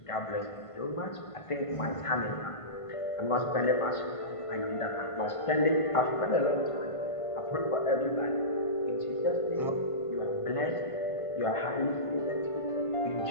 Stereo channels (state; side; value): late; right; 1.5 ms